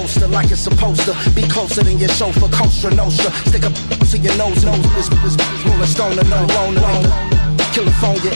like it's supposed to be closer than your chauffeur, Costa Nostra. Stick a to your nose, this rolling stone and no loner. California,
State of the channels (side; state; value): both; inverted; correlation -1.00